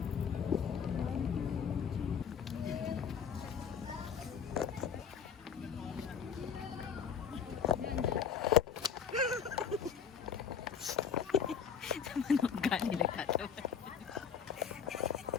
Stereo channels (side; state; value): right; quieter; 7.2 dB